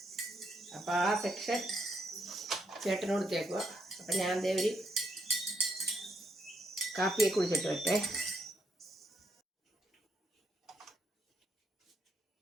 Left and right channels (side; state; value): both; normal; correlation 0.77